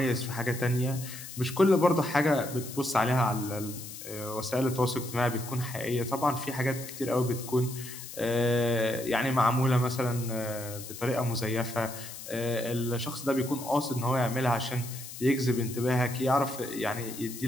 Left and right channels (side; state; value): left; noise; hiss, 12 dB below the sound